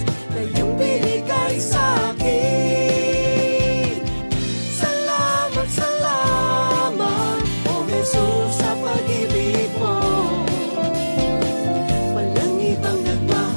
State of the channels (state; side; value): inverted; both; correlation -1.00